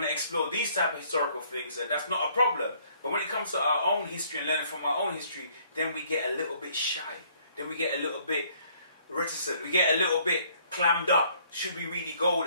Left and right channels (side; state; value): both; inverted; correlation -0.62